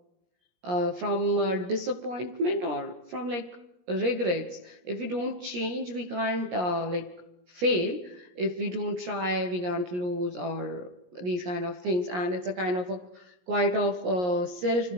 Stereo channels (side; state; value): left; late; 17 ms